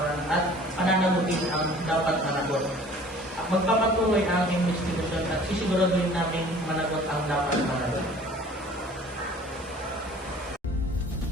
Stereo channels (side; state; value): both; normal; correlation 0.48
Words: at pananagutin ang dapat managot. Magpapatuloy ang investigasyon at sisiguraduhin namin managot ang dapat managot.